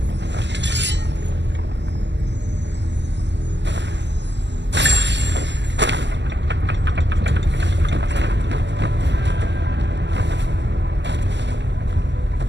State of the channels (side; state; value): left; late; 0.51 ms